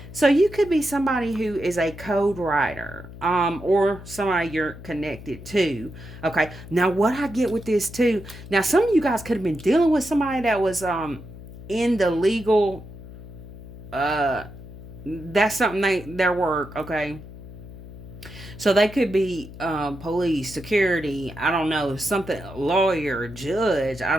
So you could be somebody who is a code writer, or somebody you're connected to. Okay. Now, what I get with this too. Now, some of you guys could have been dealing with somebody that was in the legal. That's something their work. Okay. So they could be police, security, I don't know, something, lawyer, judge, I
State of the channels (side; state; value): left; noise; hum, 15 dB below the sound